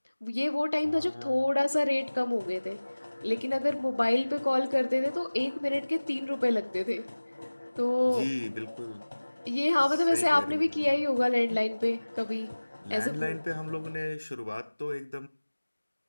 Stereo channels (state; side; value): inverted; both; correlation -1.00